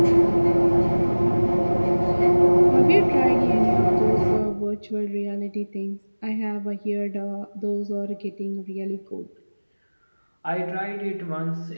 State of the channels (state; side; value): inverted; both; correlation -1.00